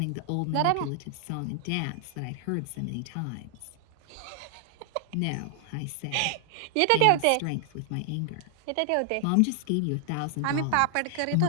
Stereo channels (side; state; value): both; different; correlation 0.00